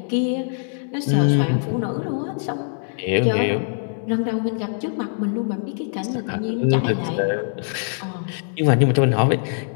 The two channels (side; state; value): right; silent; digital silence